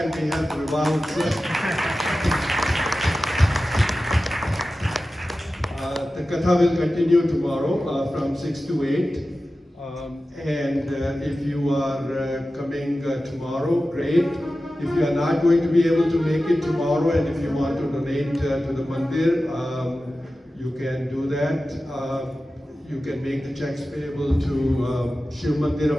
and we had the Vivah. The katha will continue tomorrow from 6 to 8. And if you are coming tomorrow, great. If you are not going to be able to make it tomorrow and if you want to donate to the mandir, you can do that. You can make the checks payable to Shiv Mandir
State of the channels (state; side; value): normal; both; correlation 0.94